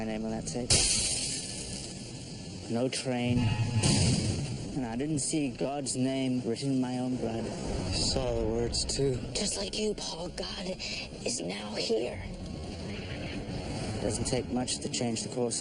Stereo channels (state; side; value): identical; both; correlation 1.00